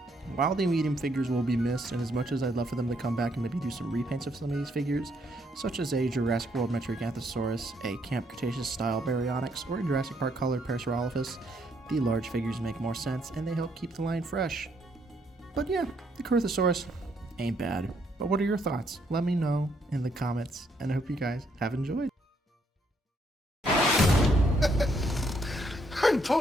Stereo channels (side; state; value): both; normal; correlation 0.72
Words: While the medium figures will be missed, and as much as I'd love for them to come back and maybe do some repaints of some of these figures, such as a Jurassic World Metriacanthosaurus, a Camp Cretaceous style Baryonyx, or a Jurassic Park colored Pachysealosaurus, the large figures make more sense and they help keep the line fresh. But yeah, the Corythosaurus ain't bad. But what are your thoughts? Let me know in the comments, and I hope you guys have enjoyed. I'm